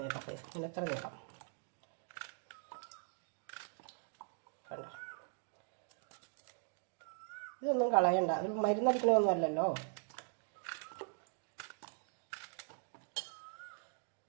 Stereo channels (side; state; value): left; silent; 51 dB below the other